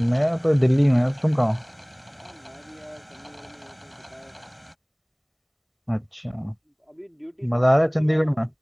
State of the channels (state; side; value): identical; both; correlation 1.00